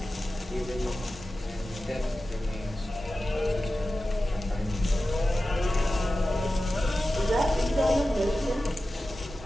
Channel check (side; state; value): both; normal; correlation 0.94